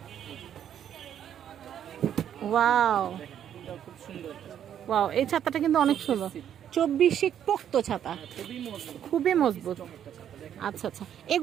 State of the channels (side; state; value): left; quieter; 9.7 dB